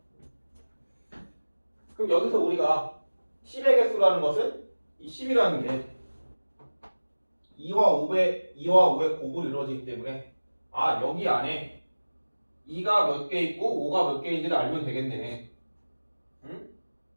그럼 여기서 우리가 10의 개수라는 것은 이 10이라는 게 2와 5의 곱으로 이루어지기 때문에 여기 안에 2가 몇 개 있고 5가 몇 개인지를 알면 되겠네. 응?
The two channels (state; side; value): inverted; both; correlation -1.00